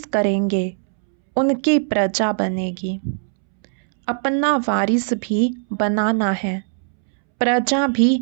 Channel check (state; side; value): silent; left; 66 dB below the other